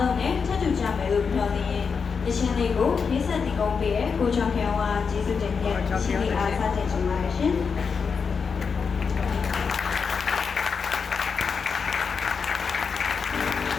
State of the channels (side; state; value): right; quieter; 5.7 dB